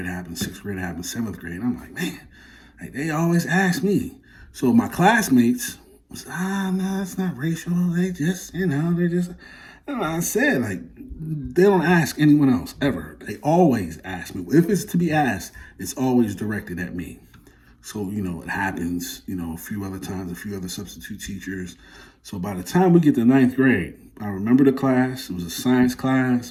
happened, sixth grade it happened, seventh grade. I'm like, man, like they always ask me. So my classmates was, no, it's not racial. They just, I said, like, they don't ask anyone else ever. They always ask me. If it's to be asked, it's always directed at me. So, it happens, a few other times, a few other substitute teachers. So by the time we get to ninth grade, I remember the class. It was a science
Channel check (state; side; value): identical; both; correlation 1.00